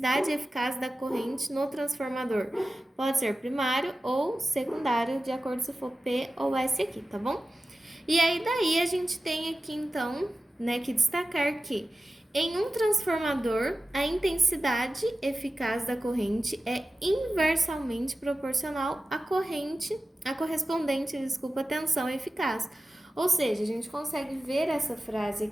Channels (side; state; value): both; normal; correlation 0.95